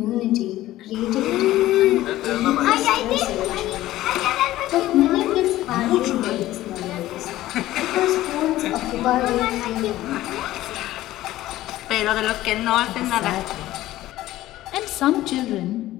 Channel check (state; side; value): quieter; right; 15.3 dB